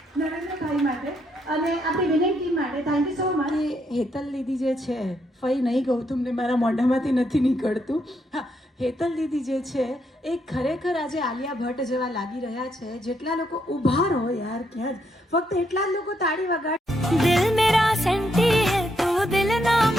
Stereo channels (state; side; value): normal; both; correlation 0.77